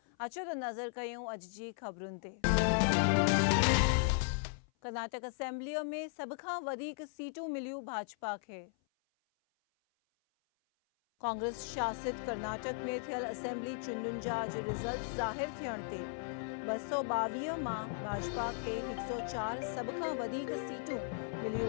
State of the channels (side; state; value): right; silent; 53 dB below the other